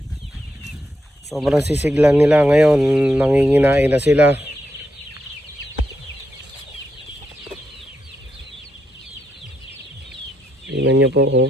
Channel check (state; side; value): normal; both; correlation 0.82